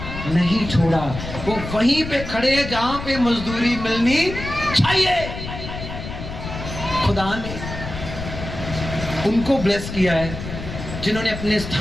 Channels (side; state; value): left; noise; rumble, 8 dB below the sound